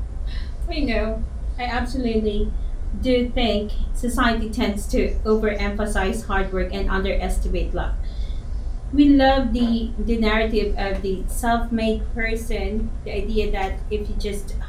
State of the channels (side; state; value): both; identical; correlation 1.00